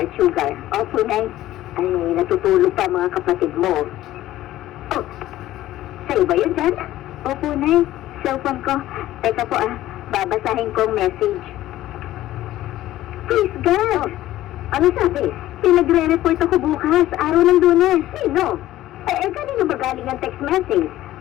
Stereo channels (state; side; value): quieter; right; 14.7 dB